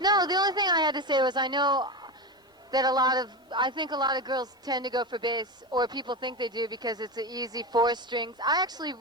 the only thing I had to say was I know that I think a lot of girls tend to go for bass, or people think they do because it's an easy 4 strings. I actually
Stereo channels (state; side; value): normal; both; correlation 0.19